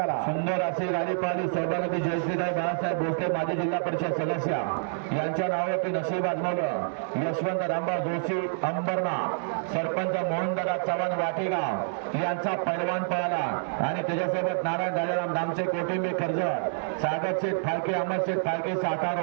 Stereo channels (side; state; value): left; silent; 60 dB below the other